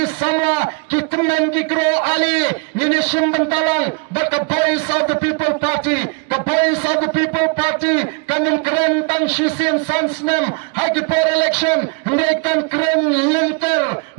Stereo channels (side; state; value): left; quieter; 32.9 dB